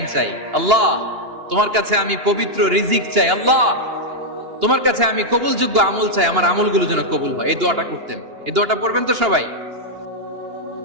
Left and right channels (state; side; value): late; left; 2.8 ms